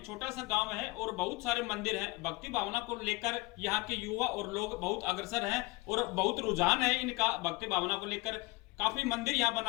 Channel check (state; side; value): quieter; right; 23.5 dB